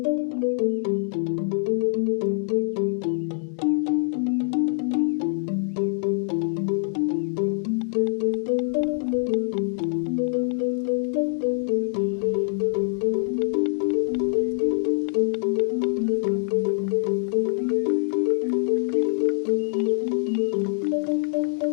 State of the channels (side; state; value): right; silent; digital silence